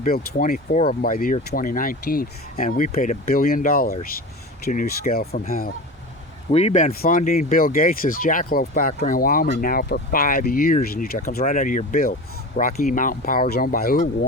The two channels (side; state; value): both; normal; correlation 0.30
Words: 24 of them by the year 2019. And we paid $1 billion to New Scale from Hell. We've been funding Bill Gates' Jackalope factory in Wyoming now for 5 years in Utah. It comes right out of your bill. Rocky Mountain Power is owned by who?